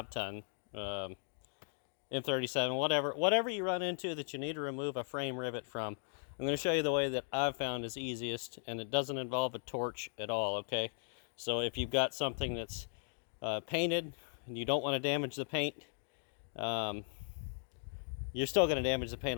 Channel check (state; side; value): silent; right; digital silence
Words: M37, whatever you run into that you need to remove a frame rivet from. I'm going to show you the way that I've found is easiest, and it doesn't involve a torch at all, okay? So if you've got something that's painted and you don't want to damage the paint, you're still going to damage the